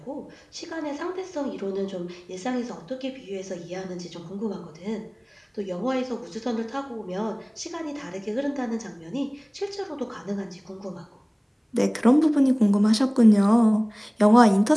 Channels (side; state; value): both; identical; correlation 1.00